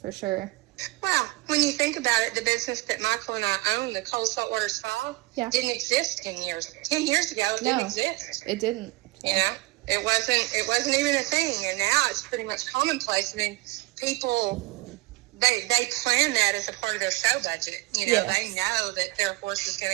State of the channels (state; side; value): quieter; left; 20.7 dB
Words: for sure. Well, when you think about it, the business that Michael and I own, the Cold Saltwater Spa, didn't exist 10 years. 10 years ago, it didn't exist. It didn't. It wasn't even a thing, and now it's pretty much commonplace. I mean, people, they plan that as a part of their show budget. They know that their horse is going